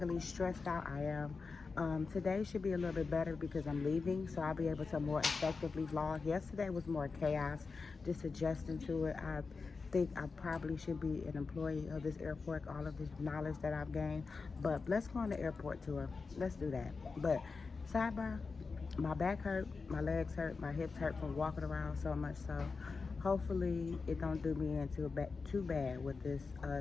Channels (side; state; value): right; quieter; 4.5 dB